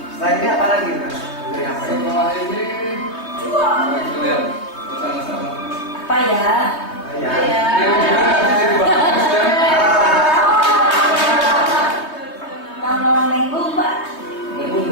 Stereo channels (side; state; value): right; late; 3.2 ms